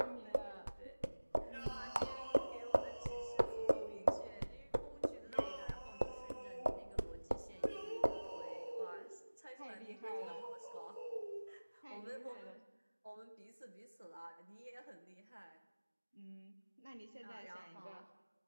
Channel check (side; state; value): both; inverted; correlation -1.00